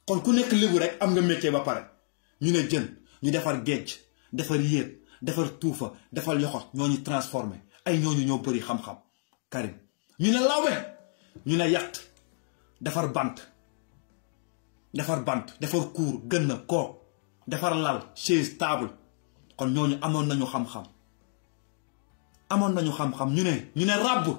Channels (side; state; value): right; silent; digital silence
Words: kon ku nekk lébu rek am nga métier ba pare ñu ne jën ñu defar géej defar yéet defar tuufa defar yoxot ñoo ñu transformé ay ñooñu ñoo bëri xam-xam Karim ñu ne lawbe ñu ne yatt defar bant defar kuur gën na kook defar lal chaise table kon ñooñu amoon nañu xam-xam ñu ne ràbb